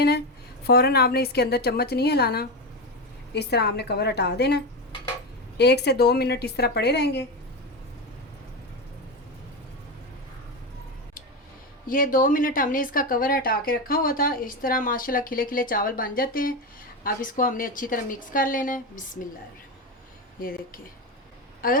है। फ़ौरन आपने इसके अंदर चम्मच नहीं हिलाना, इस तरह आपने कवर हटा देना है। 1 से 2 मिनट इस तरह पड़े रहेंगे। ये 2 मिनट हमने इसका कवर हटा के रखा हुआ था। इस तरह माशाल्लाह खिले खिले चावल बन जाते हैं। अब इसको हमने अच्छी तरह मिक्स कर लेना है। बिस्मिल्लाह। ये देखिए,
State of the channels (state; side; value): normal; both; correlation 0.15